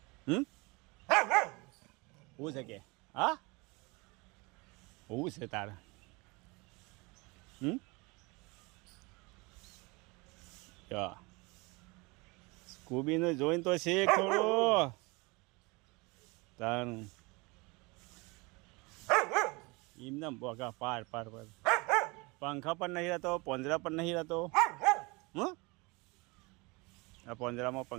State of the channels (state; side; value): quieter; left; 26.3 dB